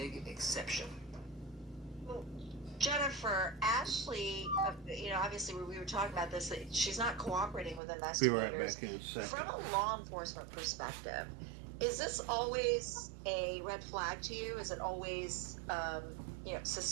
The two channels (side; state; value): left; drops out; at 7.8 s